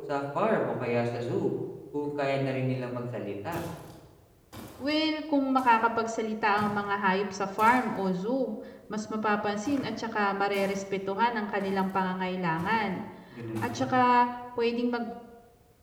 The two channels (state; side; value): identical; both; correlation 1.00